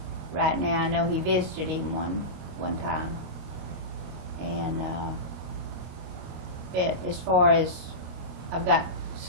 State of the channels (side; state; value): left; late; 25 ms